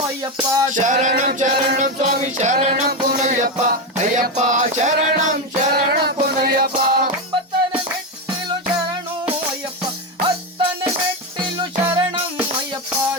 ಅಯ್ಯಪ್ಪ. ಶರಣಂ ಶರಣಂ ಸ್ವಾಮಿ ಶರಣಂ ಪುನಯ್ಯಪ್ಪ, ಅಯ್ಯಪ್ಪ ಶರಣಂ ಶರಣಂ ಪುನಯ್ಯಪ್ಪ. ಒಂಬತ್ತನೇ ಮೆಟ್ಟಿಲು ಶರಣು ಅಯ್ಯಪ್ಪ, ಹತ್ತನೇ ಮೆಟ್ಟಿಲು ಶರಣಂ ಅಯ್ಯಪ್ಪ.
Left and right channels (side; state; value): both; normal; correlation 0.11